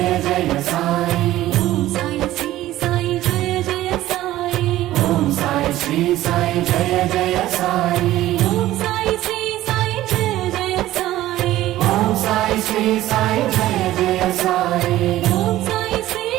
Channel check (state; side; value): quieter; left; 15.0 dB